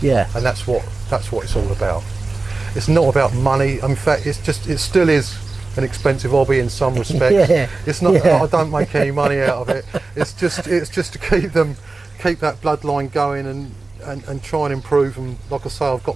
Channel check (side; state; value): left; quieter; 3.6 dB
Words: Yeah. And that's what it's all about. It's not about money. In fact, it still is an expensive hobby in some respects. It's not. I don't make any money out of it. It's just to keep that bloodline going and try and improve them. Like I say, I've got